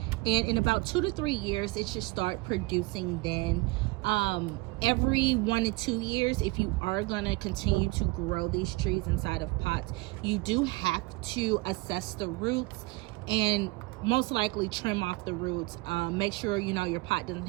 and in about 2 to 3 years it should start producing. Then every 1 to 2 years, if you are going to continue to grow these trees inside of pots, you do have to assess the roots and most likely trim off the roots. Make sure your pot doesn't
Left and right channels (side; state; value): left; quieter; 23.7 dB